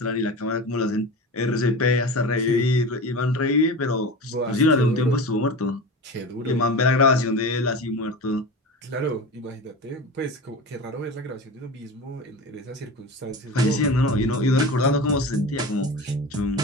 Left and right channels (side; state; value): both; normal; correlation 0.29